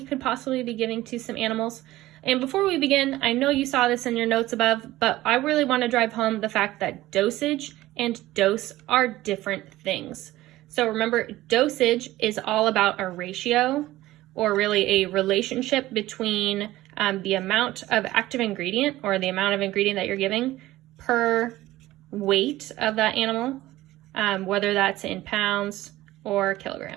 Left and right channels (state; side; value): quieter; left; 16.4 dB